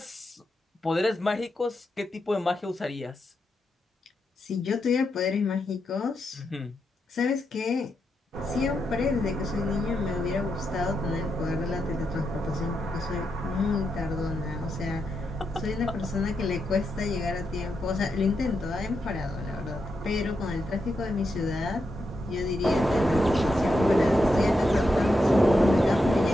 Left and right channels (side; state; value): both; normal; correlation 0.85